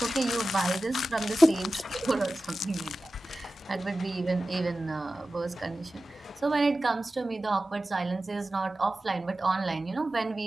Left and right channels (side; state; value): both; normal; correlation 0.95